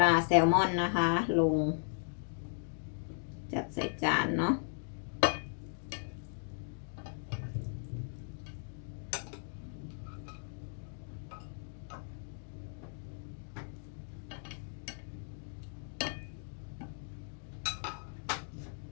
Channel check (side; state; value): right; silent; digital silence